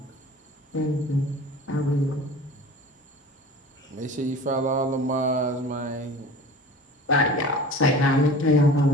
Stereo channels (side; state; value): both; normal; correlation 0.39